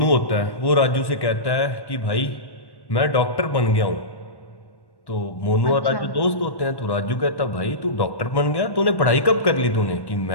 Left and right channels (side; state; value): right; late; 1.1 ms